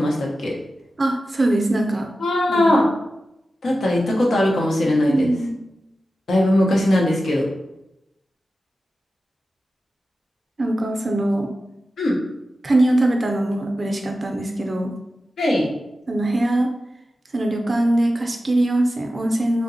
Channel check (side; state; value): both; normal; correlation 0.93